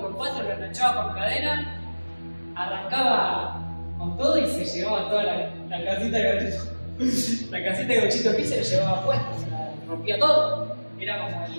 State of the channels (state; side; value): inverted; both; correlation -1.00